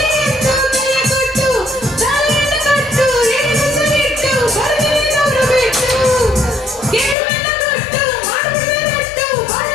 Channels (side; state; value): right; drops out; at 7.2 s